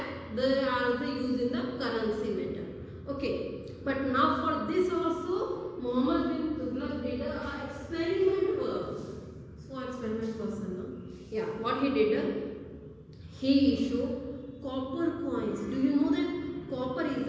they are used in the currency matter. Okay, but now for this also Muhammad bin Tughlaq did a experiment work. So experiment person, no? Yeah, what he did? He issued copper coins. Do you know that copper is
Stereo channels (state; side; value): identical; both; correlation 1.00